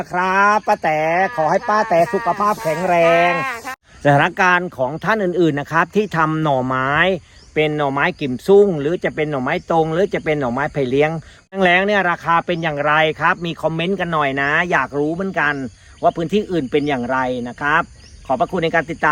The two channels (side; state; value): both; identical; correlation 1.00